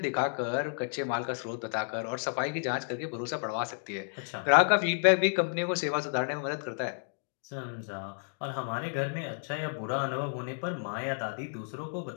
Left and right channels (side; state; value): right; silent; digital silence